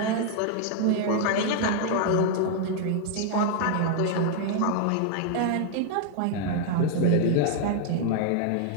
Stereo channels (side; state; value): both; different; correlation 0.00